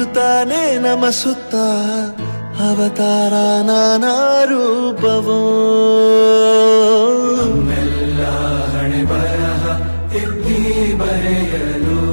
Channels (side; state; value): both; inverted; correlation -1.00